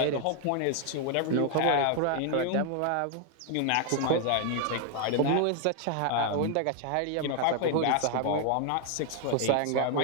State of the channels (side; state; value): both; different; correlation 0.00